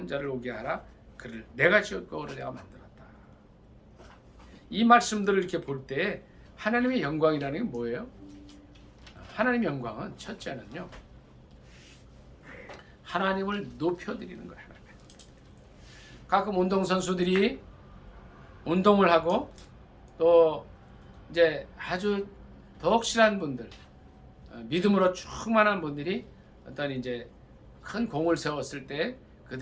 자를 오게 하라. 그를 내가 지었고 그를 내가 만들었다. 이 말씀들을 이렇게 볼 때 하나님의 영광이라는 게 뭐예요? 하나님의 영광은 첫째는요, 하나님을 높여드리는 거예요. 가끔 운동선수들이 운동을 하고 또 이제 아주 덕실한 분들, 믿음으로 충만한 분들이 어떤 이제 큰 공을 세웠을 때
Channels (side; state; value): both; identical; correlation 1.00